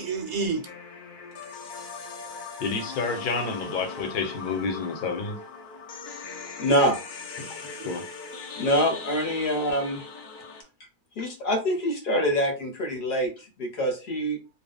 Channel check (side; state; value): right; late; 2.4 ms